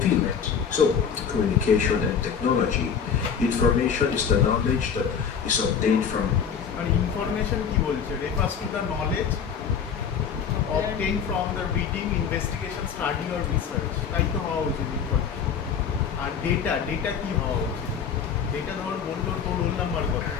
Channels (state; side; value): quieter; right; 7.1 dB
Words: So communication and technology. Information is the knowledge that is obtained from information কি বলছে refers to the knowledge obtained from the reading, investigation, study or research. তাই তো হওয়া উচিত information. আর data কি হওয়া উচিত data ধর বললো তোর রোল নাম্বার কত